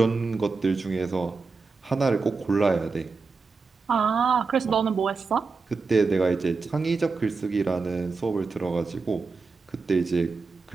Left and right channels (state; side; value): quieter; left; 4.4 dB